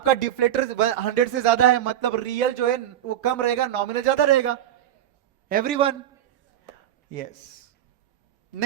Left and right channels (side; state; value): left; quieter; 11.6 dB